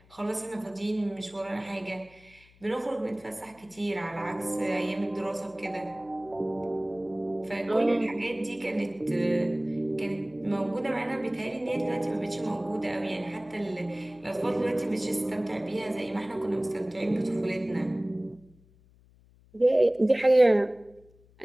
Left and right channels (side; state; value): left; noise; hum, 28 dB below the sound